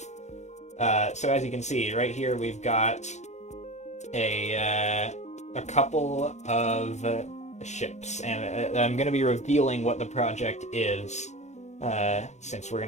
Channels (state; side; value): late; right; 0.33 ms